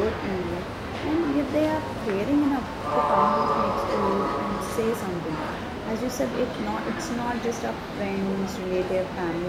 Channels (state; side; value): identical; both; correlation 1.00